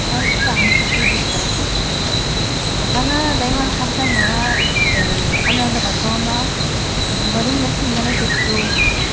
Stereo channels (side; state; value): both; identical; correlation 1.00